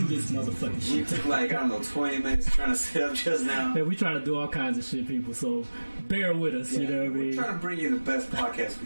this motherfucking shit. We took like, 20 minutes trying to set up just now. Man, we trying to do all kinds of shit, people. So bear with us. You know what I mean? We're trying to bring you the best podcast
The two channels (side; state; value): both; inverted; correlation -1.00